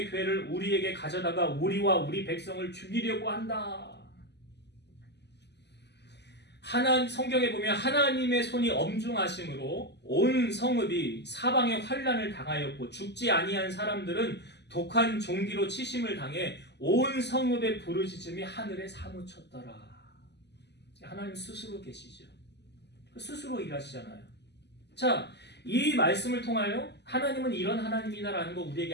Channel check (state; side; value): late; right; 0.50 ms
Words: 괴를 우리에게 가져다가 우리와 우리 백성을 죽이려고 한다. 성경에 보면 하나님의 손이 엄중하심으로 온 성읍이 사방의 환난을 당하였고 죽지 아니한 사람들은 독한 종기로 치심을 당해 온 성읍의 부르짖음이 하늘에 사무쳤더라. 하나님 스스로 계시죠. 스스로 일하시잖아요. 자, 이 말씀을 통하여 하나님은 이런 하나님이다라는 거 우리에게